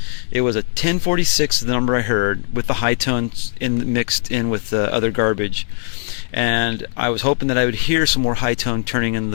It was a 1046, the number I heard, with the high tones mixed in with the other garbage. And I was hoping that I would hear some more high tone turning in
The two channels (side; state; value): right; silent; digital silence